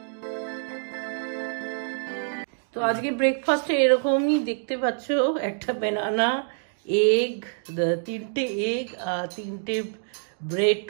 তো আজকে ব্রেকফাস্টে এরকমই দেখতে পাচ্ছ, একটা ব্যানানা, এগ, 3টে এগ আর 3টে ব্রেড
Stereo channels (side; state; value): left; silent; digital silence